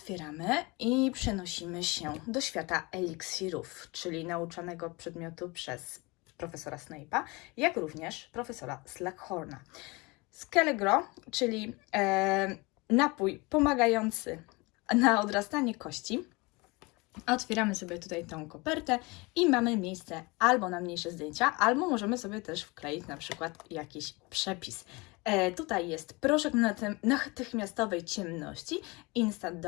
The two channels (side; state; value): right; quieter; 25.5 dB